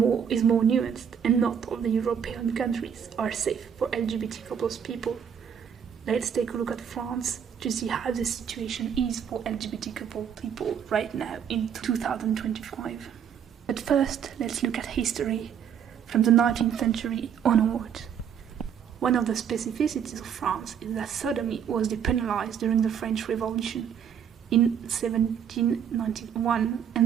more nuanced, and not all the European countries are safe for LGBT couples people. Let's take a look at France to see how the situation is for LGBT couple people right now in 2025. But first, let's look at history from the 19th century onward. One of the specificities of France is that sodomy was depenalized during the French Revolution in 1791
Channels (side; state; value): left; quieter; 8.1 dB